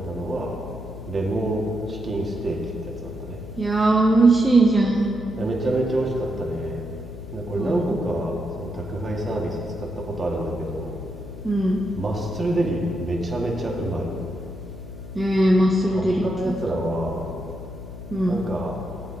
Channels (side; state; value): left; noise; hum, 12 dB below the sound